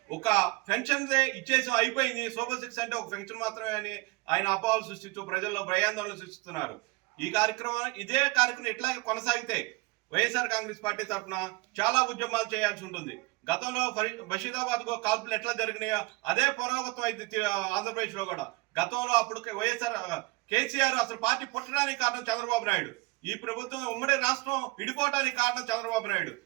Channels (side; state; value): left; quieter; 24.6 dB